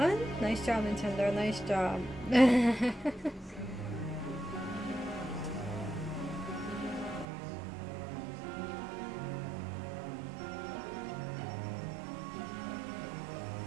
Nice job, Nintendo. Nice job.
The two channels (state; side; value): drops out; left; at 7.2 s